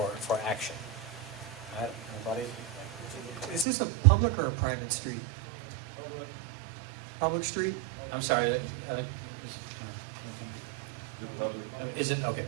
action. All right, anybody? Is this a public or a private street? Public street? I'm sorry. Is it? Okay,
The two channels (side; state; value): left; drops out; at 3.7 s